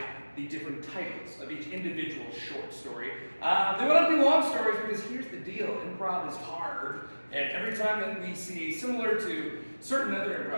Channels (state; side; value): inverted; both; correlation -1.00